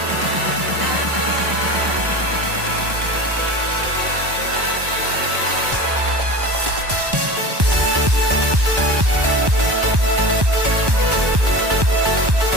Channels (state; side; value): late; left; 1.1 ms